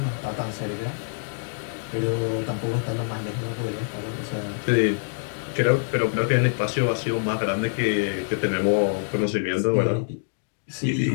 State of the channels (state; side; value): silent; right; digital silence